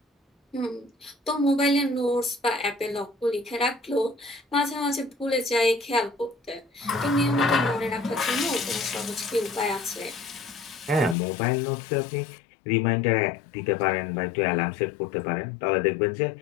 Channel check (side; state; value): right; drops out; at 11.2 s